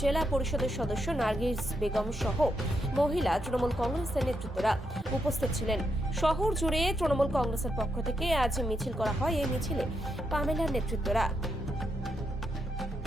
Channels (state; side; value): normal; both; correlation 0.82